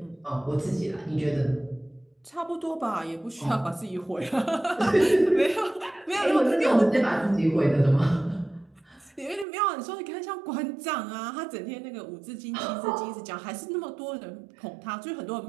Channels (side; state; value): left; drops out; at 9.5 s